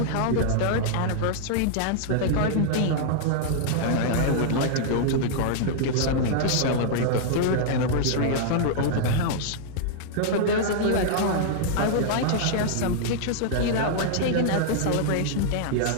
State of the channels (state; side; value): different; both; correlation -0.01